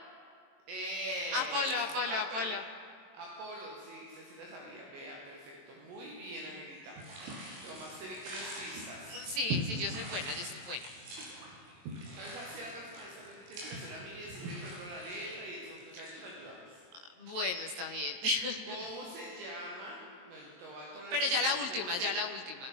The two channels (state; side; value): late; left; 22 ms